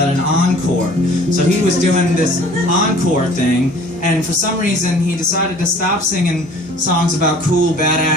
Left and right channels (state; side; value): normal; both; correlation 0.50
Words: an encore. So he was doing this encore thing, and for some reason he decided to stop singing songs about cool